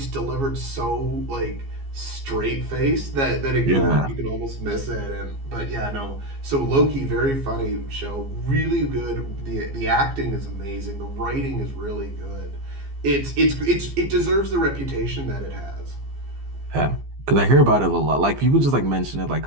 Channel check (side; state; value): left; late; 15 ms